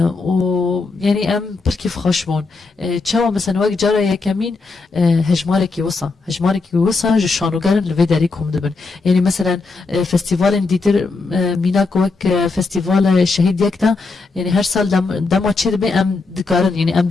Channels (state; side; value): quieter; right; 3.9 dB